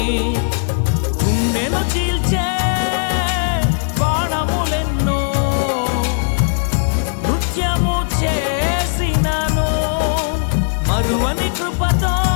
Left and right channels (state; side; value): silent; right; digital silence